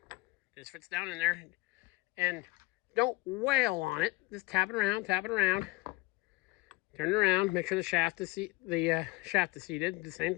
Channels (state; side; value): quieter; right; 21.8 dB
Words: Just fits down in there, and don't wail on it. Just tap it around, turn it around. Make sure the shaft is seated. The same